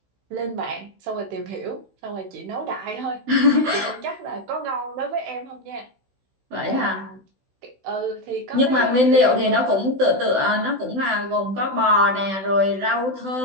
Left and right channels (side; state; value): left; late; 16 ms